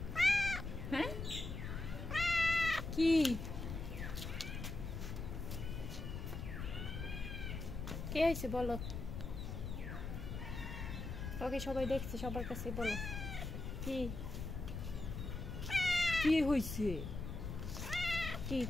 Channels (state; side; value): noise; left; rumble, 5 dB below the sound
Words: হ্যাঁ কি কে হয়েছে বলো? ওকে সবাই দেখছে, সবার কাছে বলো কি কি হয়েছে? কি